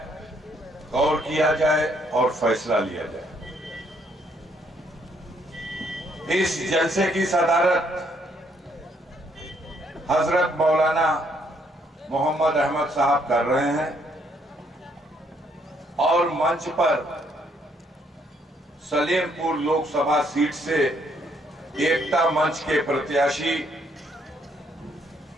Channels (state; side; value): normal; both; correlation 0.70